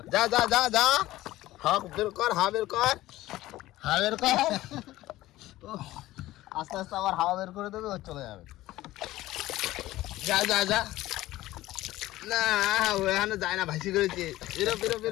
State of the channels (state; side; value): quieter; right; 16.4 dB